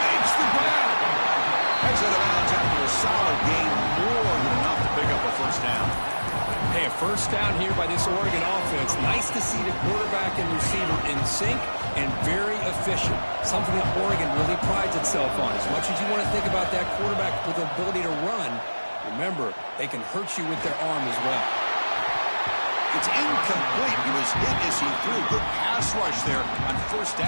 the grab. Heads out of bounds after a solid gain. More than enough to pick up a first down. Hey, a first down here by this Oregon offense. Nice to see the quarterback and receiver in sync and very efficient. Something that Oregon really prides itself on. As much as you want to think about that quarterback with the ability to run, remember, they can hurt you with their arm as well. It's incomplete. He was hit as he threw. Good pass rush there on first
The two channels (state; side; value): inverted; both; correlation -1.00